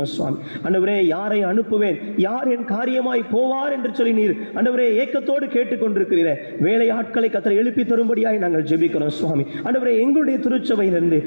சுவாமி. ஆண்டவரே, யாரை அனுப்புவேன், யார் என் காரியமாய் போவார் என்று சொல்லி நீர் ஆண்டவரே ஏக்கத்தோடு கேட்டுக்கொண்டிருக்கிறீரே. வேலை ஆட்களை கர்த்தர் எழுப்பி தரும்படியாய் நாங்கள் ஜெபிக்கிறோம் சுவாமி. ஆண்டவரே, எங்களுடைய திருச்சபையிலிருந்து,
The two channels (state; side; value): inverted; both; correlation -1.00